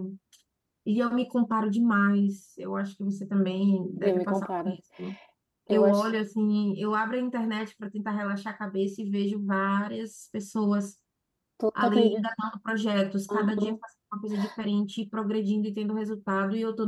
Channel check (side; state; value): both; identical; correlation 1.00